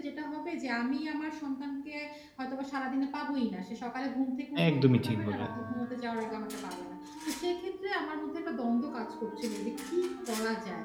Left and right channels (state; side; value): identical; both; correlation 1.00